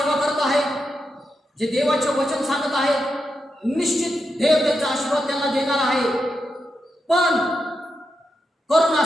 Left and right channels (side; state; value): both; normal; correlation 0.86